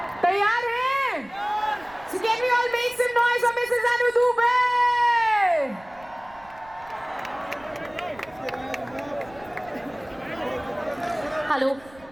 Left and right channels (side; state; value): right; noise; rumble, 24 dB below the sound